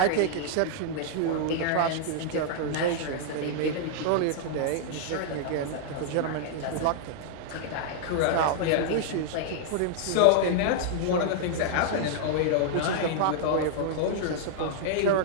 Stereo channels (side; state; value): both; different; correlation -0.01